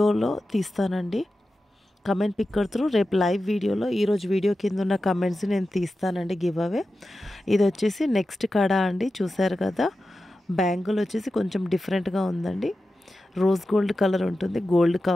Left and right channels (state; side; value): normal; both; correlation 0.93